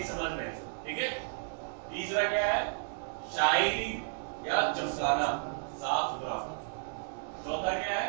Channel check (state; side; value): silent; left; digital silence